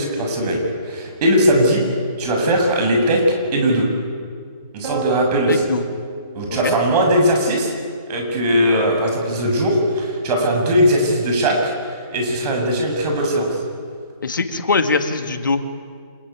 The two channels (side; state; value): both; inverted; correlation -0.54